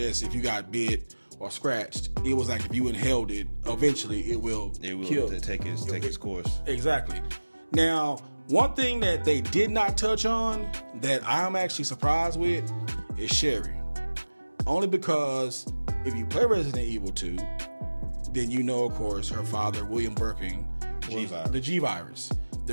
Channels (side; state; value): both; inverted; correlation -1.00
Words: if you got bit or scratched. It was like if you inhaled it, eventually it will kill. Take its course. Exactly. Now, one thing that they did not touch on that I'm actually surprised with is Sherry. Only because if you play Resident Evil 2, then you know, of course, her father, William Birkin, was the G virus.